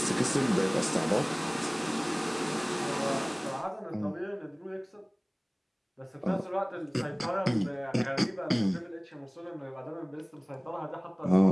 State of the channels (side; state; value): both; identical; correlation 1.00